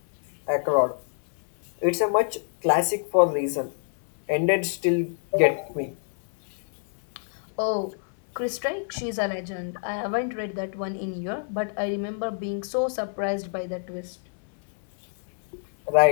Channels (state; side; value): silent; right; 60 dB below the other